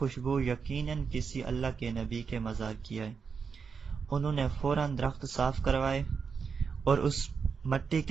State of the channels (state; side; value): quieter; left; 5.8 dB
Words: یقیناً کسی اللہ کے نبی کے مزار کی ہے۔ انہوں نے فوراً درخت صاف کروائے اور اس مٹی